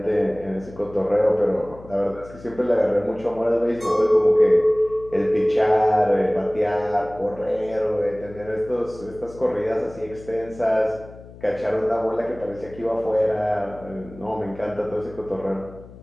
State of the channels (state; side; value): noise; left; hum, 19 dB below the sound